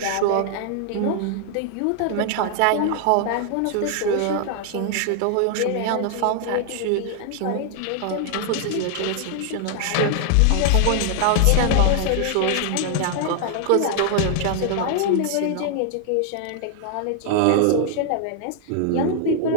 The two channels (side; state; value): both; different; correlation 0.00